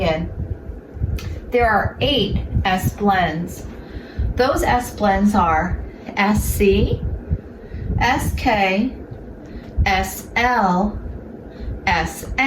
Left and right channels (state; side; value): identical; both; correlation 1.00